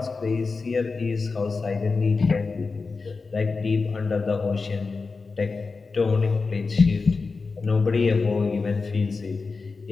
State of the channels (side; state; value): right; quieter; 4.3 dB